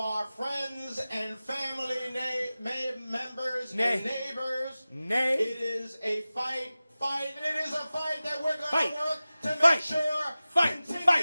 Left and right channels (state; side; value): inverted; both; correlation -0.96